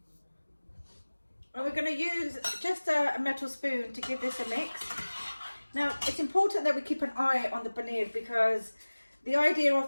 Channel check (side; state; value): both; inverted; correlation -1.00